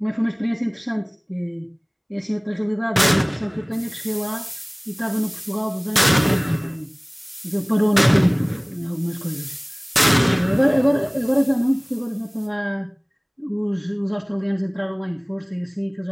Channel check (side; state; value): both; identical; correlation 1.00